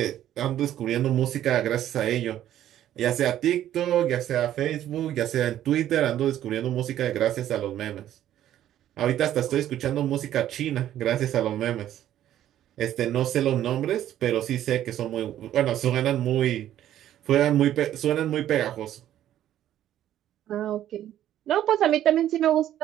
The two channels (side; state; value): left; quieter; 11.9 dB